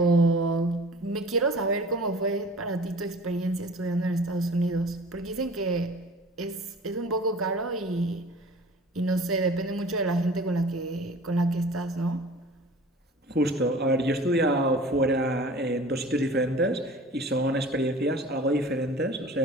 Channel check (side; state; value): both; normal; correlation 0.43